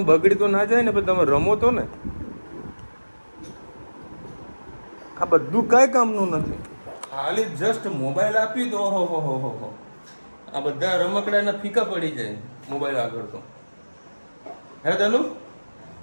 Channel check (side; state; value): both; inverted; correlation -1.00